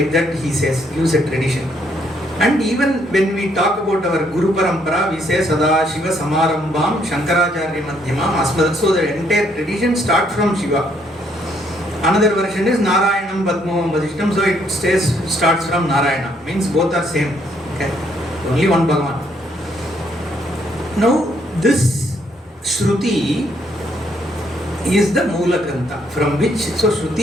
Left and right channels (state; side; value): normal; both; correlation 0.70